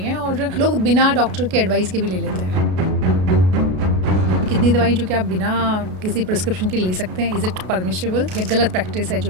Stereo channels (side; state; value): left; late; 33 ms